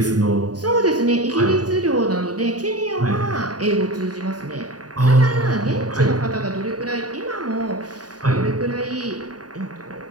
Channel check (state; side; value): late; left; 0.68 ms